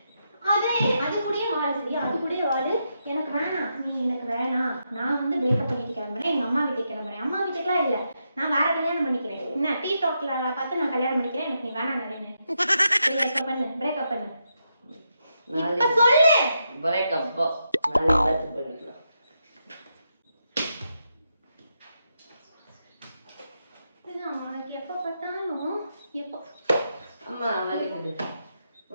அது கூடயே வாழு, சரியா? அது கூடயே வாழு. எனக்கு வேணாம், நீ எனக்கு வேணாம். நான் வந்து பிரேக்கப் பண்ணிட்டு கிளம்புறேன், எங்க அம்மா வீட்டுக்கு கிளம்புறேன். அம்மா வீட்டுக்குலாம் இல்லை, நான் வேற கல்யாணம் பண்ணிக்கிறேன். என்ன டீ டாக்ல பார்த்து நான் கல்யாணம் பண்ணிக்கிறேன், எனக்கு நீ வேணாம் நிறைய. பிரேக்கப் பண்ணு, பிரேக்கப் பண்ணு. இப்ப சொல்லு. பிரேக்கப் நாளைக்கு பண்ணிக்கலாம். உனக்கு எப்ப பார்த்தாலும் எப்போ அம்மா வலிக்குது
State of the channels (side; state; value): both; inverted; correlation -0.83